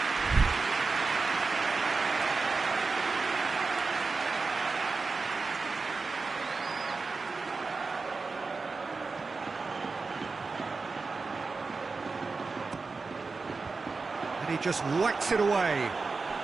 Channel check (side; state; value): left; quieter; 4.2 dB